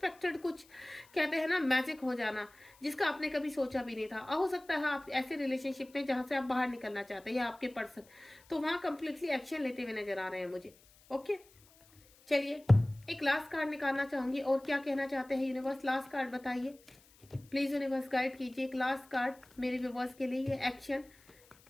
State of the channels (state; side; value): noise; left; hiss, 27 dB below the sound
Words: कुछ कहते हैं ना मैजिक हो जाना, जिसका आपने कभी सोचा भी नहीं था। हो सकता है आप ऐसे रिलेशनशिप में जहां से आप बाहर निकलना चाहते हैं, या आपके पर्सन तो वहां कंप्लीटली एक्शन लेते हुए नजर आ रहे हैं मुझे। ओके, चलिए एक लास्ट कार्ड निकालना चाहूंगी, और क्या कहना चाहते हैं यूनिवर्स, लास्ट कार्ड बताइए प्लीज। यूनिवर्स गाइड कीजिए एक लास्ट कार्ड मेरे व्यूअर्स के लिए। ये एक्शन